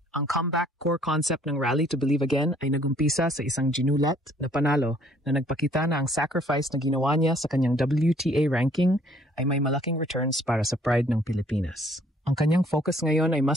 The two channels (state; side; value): normal; both; correlation 0.61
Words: Ang comeback core concept ng Rally to Believe Again ay nagumpisa sa isang ginulat na panalo na nagpakita na ang sacrifice na ginawa niya sa kanyang WTA ranking ay may malaking returns para sa pride ng Pilipinas. Ang kanyang focus ngayon ay